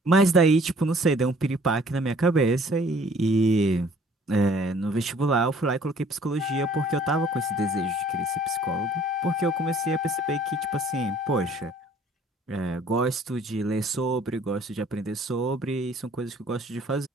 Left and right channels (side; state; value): both; normal; correlation 0.56